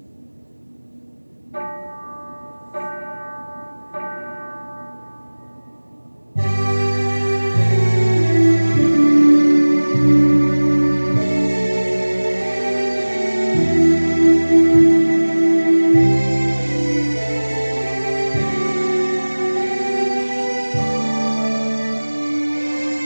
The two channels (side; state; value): both; inverted; correlation -1.00